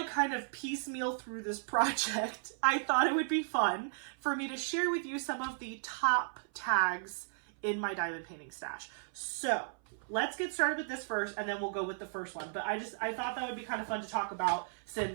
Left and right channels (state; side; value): silent; left; 54 dB below the other